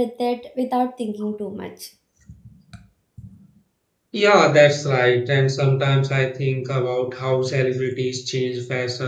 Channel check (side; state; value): both; identical; correlation 1.00